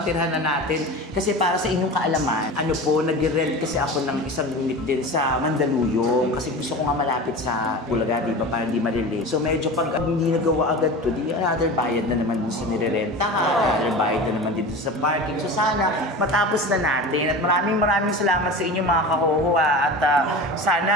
na natin. Kasi para sa inyong kaalaman, ano po, nag-rent kasi ako ng isang unit din sa Mandaluyong. Kasi gusto ko nga malapit sa Bulaga, di ba? Para hindi malili. So medyo pag hindi nagawa agad to, di another bayad na naman dun sa nirerentahan. Another bayad na naman dito sa parking. So sana matapos na natin. At maraming salamat sa inyo mga kahoho. At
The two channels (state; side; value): normal; both; correlation 0.32